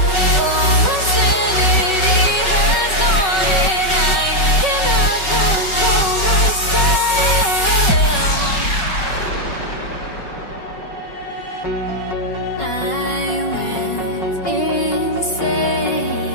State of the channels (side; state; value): right; late; 5.3 ms